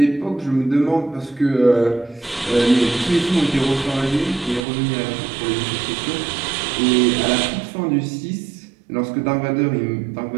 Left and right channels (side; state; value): left; drops out; at 4.6 s